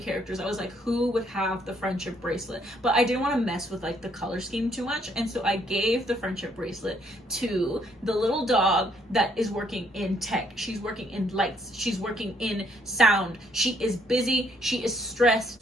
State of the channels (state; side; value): normal; both; correlation 0.69